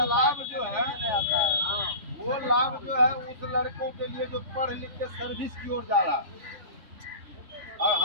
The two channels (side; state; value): left; late; 3.5 ms